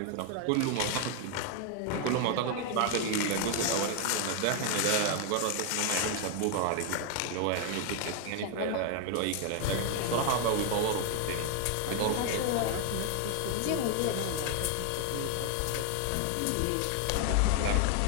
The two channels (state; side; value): different; both; correlation 0.00